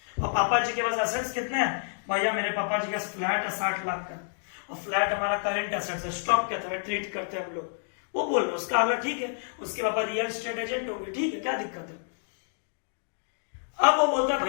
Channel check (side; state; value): right; silent; digital silence